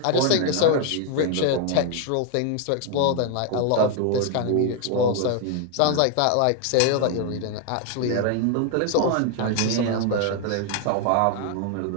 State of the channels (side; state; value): both; different; correlation 0.01